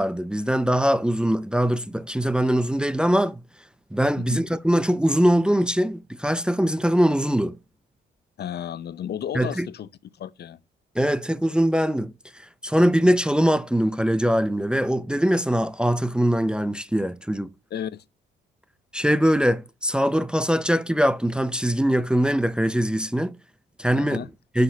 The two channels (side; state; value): both; normal; correlation 0.94